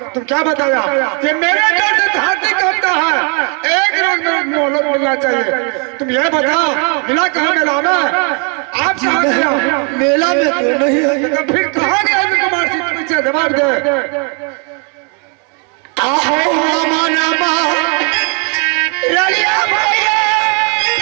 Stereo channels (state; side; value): quieter; left; 36.3 dB